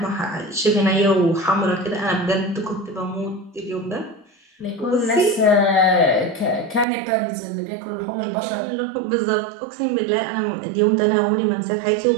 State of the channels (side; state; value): left; drops out; at 6.9 s